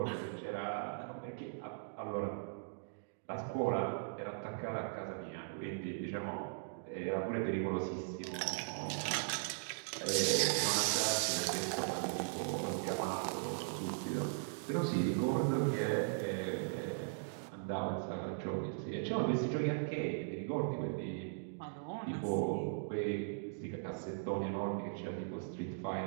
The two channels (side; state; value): left; silent; digital silence